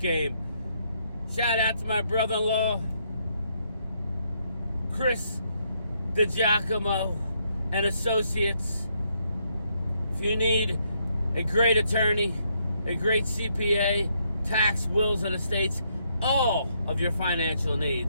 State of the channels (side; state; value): both; inverted; correlation -0.74